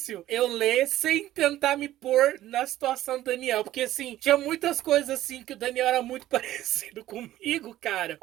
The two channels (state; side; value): quieter; left; 14.2 dB